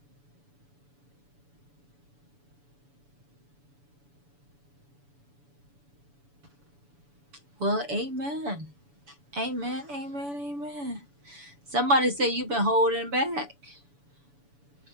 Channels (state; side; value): late; left; 7.0 ms